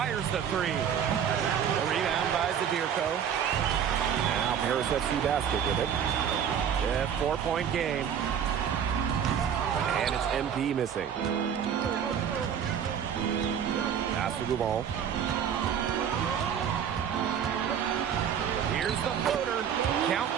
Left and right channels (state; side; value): quieter; left; 8.3 dB